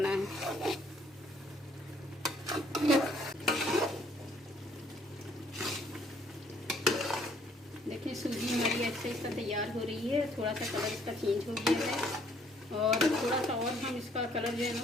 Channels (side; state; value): both; normal; correlation 0.64